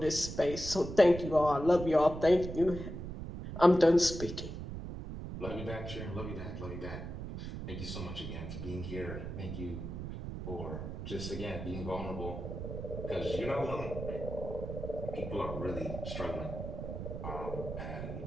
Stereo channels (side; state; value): right; noise; rumble, 7 dB below the sound